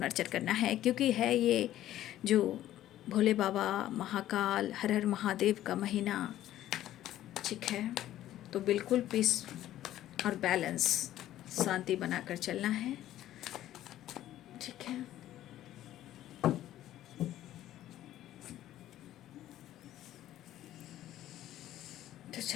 करना है, क्योंकि है ये जो भोले बाबा, महाकाल, हर हर महादेव का महीना, ठीक है। तो बिल्कुल पीस और बैलेंस, शांति बनाकर चलना है, ठीक है। तो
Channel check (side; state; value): right; quieter; 13.2 dB